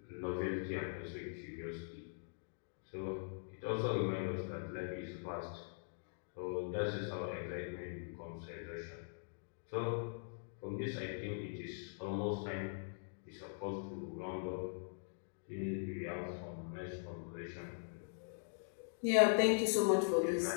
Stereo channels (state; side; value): silent; right; digital silence